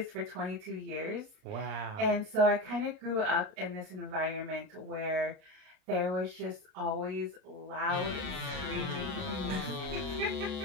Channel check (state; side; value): late; left; 38 ms